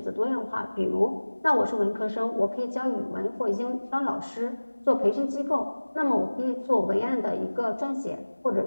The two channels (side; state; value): both; inverted; correlation -1.00